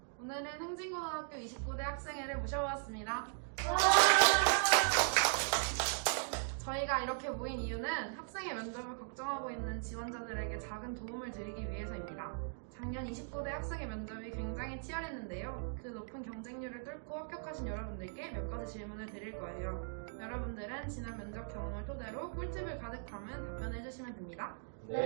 오늘은 흥진고등학교 29대 학생회를 모셔보았습니다. 저희가 이렇게 모인 이유는 학생의 면접을 걱정하고 있는 지원자들에게 작은 도움을 드리기 위해서입니다. 작년 29대 학생의 면접이 굉장히 치열했는데요. 그 높은 경쟁률을 뚫고 합격하신 여러분들께 몇 가지 질문을 드릴 거예요. 여러분들은 지난 면접 경험을 토대로 꿀팁을 가득 담은 답변을 해주시면 됩니다.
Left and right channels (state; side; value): silent; left; digital silence